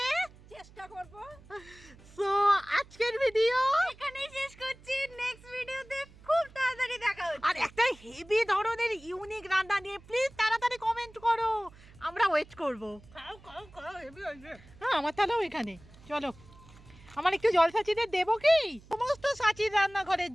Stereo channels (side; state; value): right; noise; hum, 23 dB below the sound